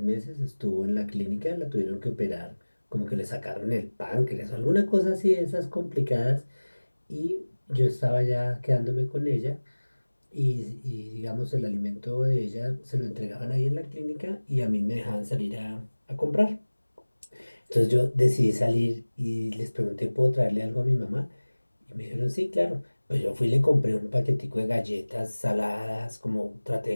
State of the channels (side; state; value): both; inverted; correlation -1.00